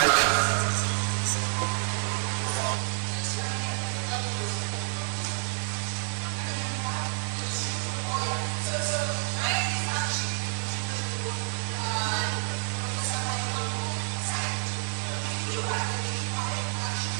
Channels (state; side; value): silent; left; digital silence